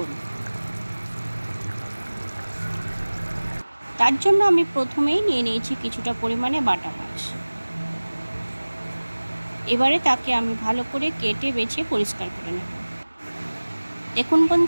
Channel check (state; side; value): inverted; both; correlation -1.00